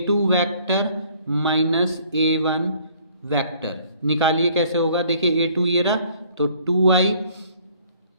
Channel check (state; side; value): inverted; both; correlation -0.58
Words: vector minus a1 vector निकालिए, कैसे होगा। देखिए a2 ये रहा, तो 2i